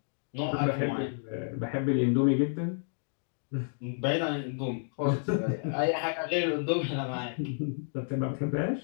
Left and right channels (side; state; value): right; silent; digital silence